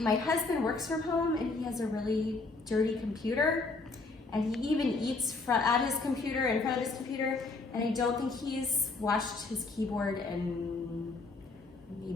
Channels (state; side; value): quieter; right; 3.7 dB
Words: husband works from home and he has a really dirty computer. And he even eats at his computer, in front of his computer. And I don't think he's washed his keyboard in